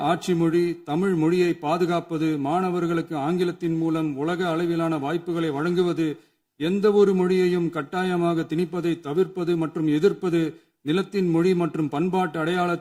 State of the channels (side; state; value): both; identical; correlation 1.00